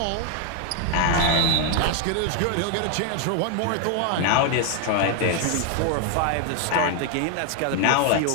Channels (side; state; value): both; different; correlation 0.00